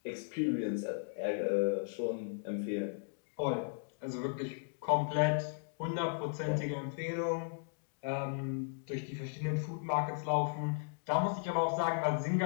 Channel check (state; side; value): silent; right; digital silence